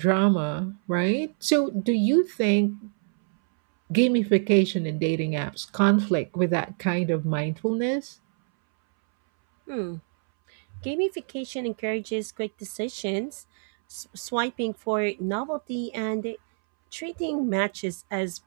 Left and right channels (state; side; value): silent; left; 61 dB below the other